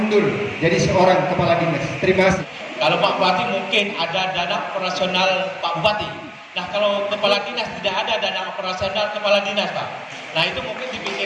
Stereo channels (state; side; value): identical; both; correlation 1.00